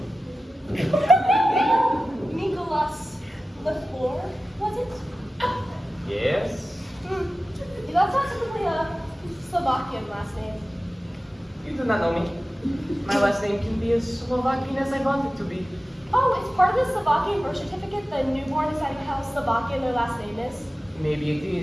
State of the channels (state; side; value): normal; both; correlation 0.95